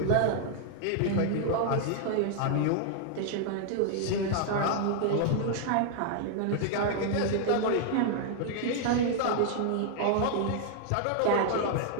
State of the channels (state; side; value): different; both; correlation 0.00